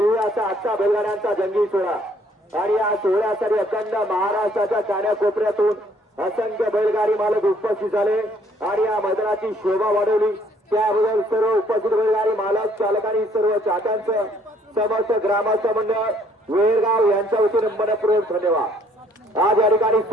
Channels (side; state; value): both; normal; correlation 0.63